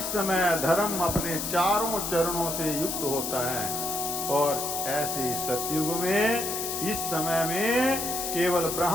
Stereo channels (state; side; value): noise; left; hiss, 3 dB below the sound